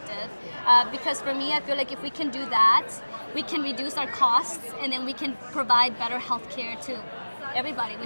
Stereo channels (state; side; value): inverted; both; correlation -1.00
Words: Because for me, I feel like if we can do that, we can reduce our costs, and then we can provide better healthcare to everybody,